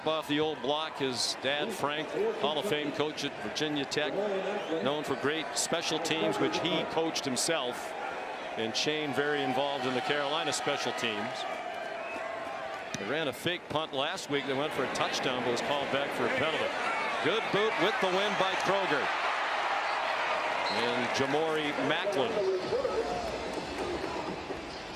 off the old block. His dad, Frank, Hall of Fame coach at Virginia Tech, known for great special teams, which he coached himself. And Shane very involved in the Carolina special teams. They ran a fake punt last week. They went for a touchdown, but was called back for a penalty. Good boot with the win by Kroger. And Jamori Macklin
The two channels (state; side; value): identical; both; correlation 1.00